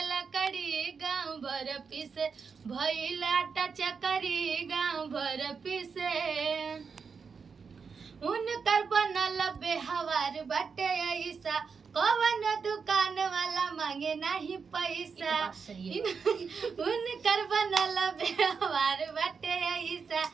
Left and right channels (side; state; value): left; quieter; 5.6 dB